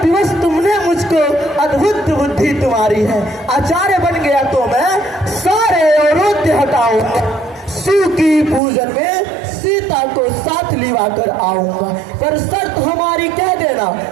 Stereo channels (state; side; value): drops out; left; at 8.6 s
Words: विवश तुमने मुझको, अद्भुत बुद्धि तुम्हारी है। आचार्य बन गया तो मैं सारे अवरोध हटाऊंगा। शिव की पूजन में सीता को साथ लिवा कर आऊंगा, पर शर्त हमारी कह देना,